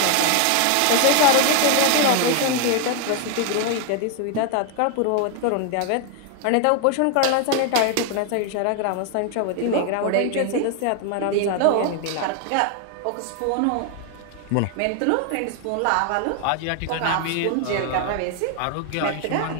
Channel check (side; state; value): both; different; correlation 0.01